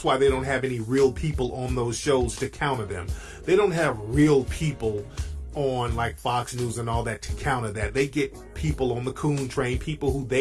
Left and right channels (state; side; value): identical; both; correlation 1.00